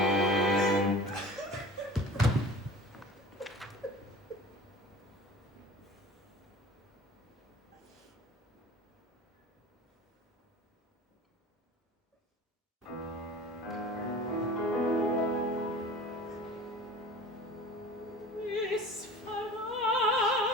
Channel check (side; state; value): both; normal; correlation 0.40